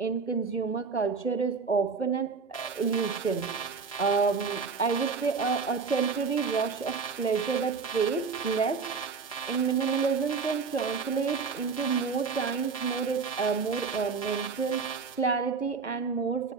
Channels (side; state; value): left; quieter; 5.2 dB